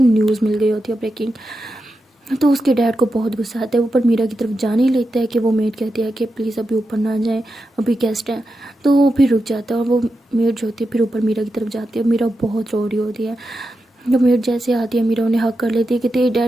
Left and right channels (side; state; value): both; normal; correlation 0.89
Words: मिल गई होती है ब्रेकिंग। तो उसके डैड को बहुत गुस्सा आता है, ऊपर मीरा की तरफ जाने ही लेता है कि वो मेड कहती है कि प्लीज़ अभी ऊपर ना जाएं, अभी गेस्ट हैं। तो वो फिर रुक जाता है और वो मेड जो होती है फिर ऊपर मीरा की तरफ जाती है। मीरा बहुत रो रही होती है। जब मेड जैसे आती है मीरा उन्हें हक कर लेती है कि तेरे